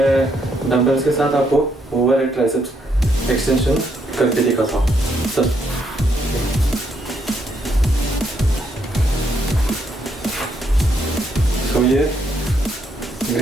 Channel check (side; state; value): both; normal; correlation 0.75